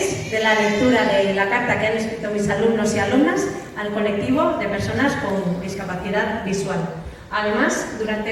de la lectura de la carta que han escrito mis alumnos y alumnas al colectivo de personas con discapacidad visual. Además, durante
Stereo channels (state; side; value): identical; both; correlation 1.00